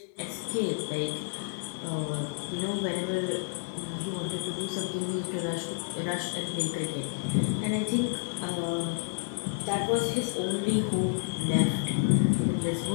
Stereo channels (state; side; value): silent; right; 58 dB below the other